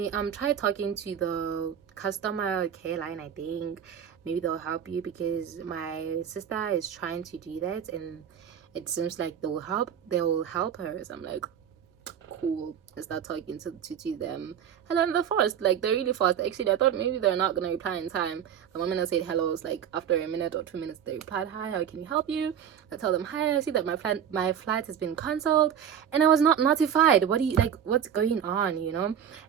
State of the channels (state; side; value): quieter; left; 8.7 dB